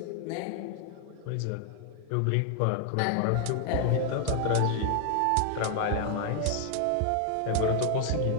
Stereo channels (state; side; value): different; both; correlation 0.00